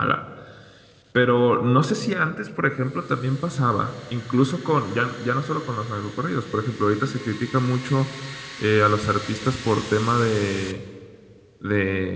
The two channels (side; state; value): both; identical; correlation 1.00